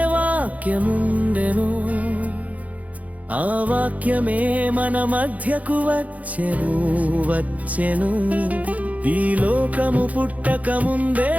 వాక్యముండెను, ఆ వాక్యమే మన మధ్యకు వచ్చెను. ఈ లోకము పుట్టక ముందే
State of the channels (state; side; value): late; left; 0.072 ms